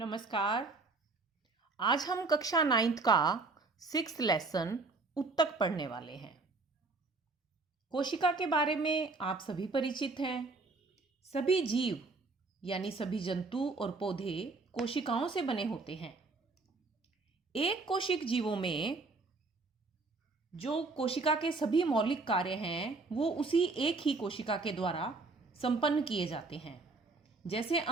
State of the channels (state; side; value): quieter; left; 3.7 dB